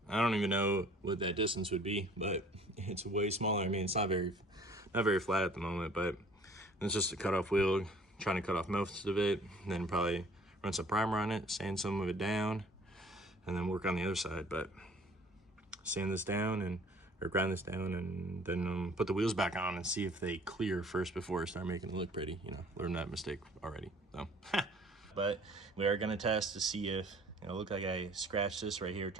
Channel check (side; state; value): both; normal; correlation 0.53